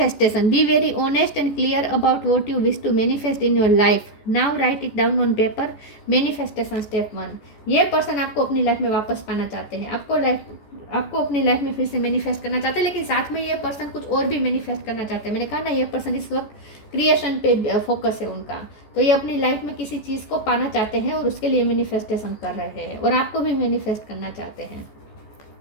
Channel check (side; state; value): right; late; 14 ms